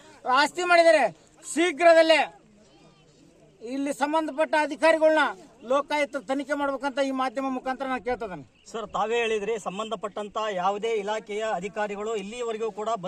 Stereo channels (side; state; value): both; identical; correlation 1.00